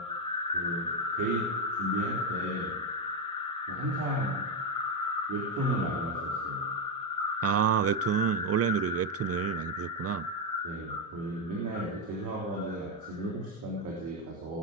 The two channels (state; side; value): normal; both; correlation 0.07